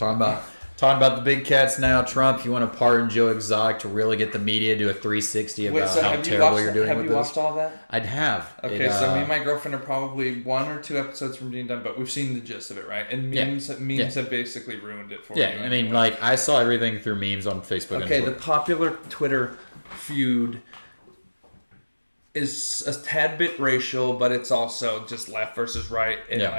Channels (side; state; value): both; inverted; correlation -1.00